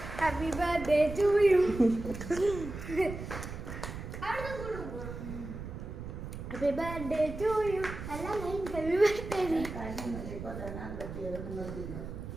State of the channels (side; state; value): right; noise; rumble, 9 dB below the sound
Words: Happy birthday to you. Happy birthday to you. Happy birthday. ഇപ്പോൾ തന്നെ കെട്ടിയത് നിങ്ങൾ തിന്നു